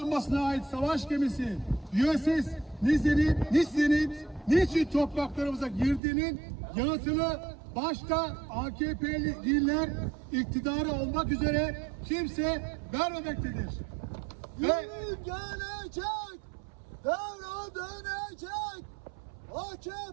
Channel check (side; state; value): left; drops out; at 6.0 s